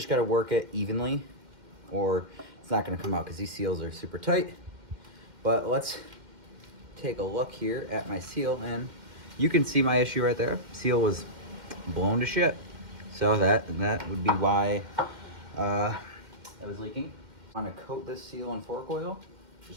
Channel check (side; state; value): left; late; 2.1 ms